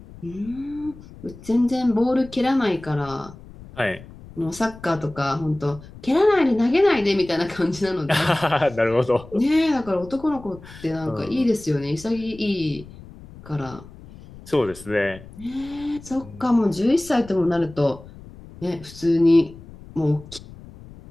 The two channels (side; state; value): left; noise; rumble, 18 dB below the sound